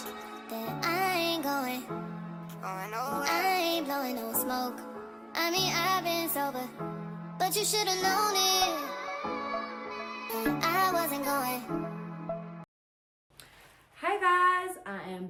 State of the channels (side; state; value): both; identical; correlation 1.00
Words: that I ain't going nowhere. I ain't blowing no smoke. I mean, I've been sober, but you should've known it. I wasn't going. Hi guys, I